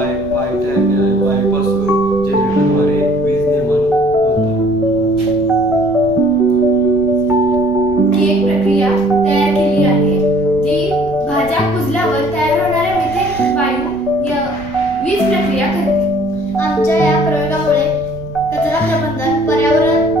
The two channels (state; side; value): noise; right; rumble, 18 dB below the sound